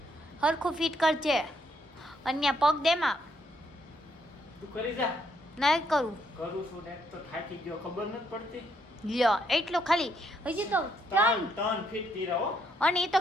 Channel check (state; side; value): normal; both; correlation 0.74